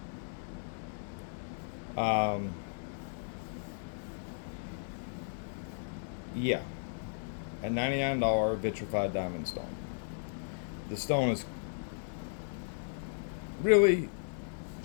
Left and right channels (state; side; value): silent; right; digital silence